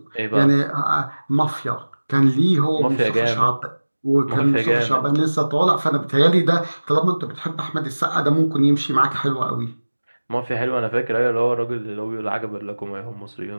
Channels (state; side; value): inverted; both; correlation -1.00